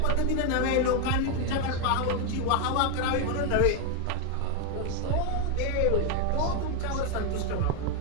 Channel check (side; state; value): both; different; correlation 0.01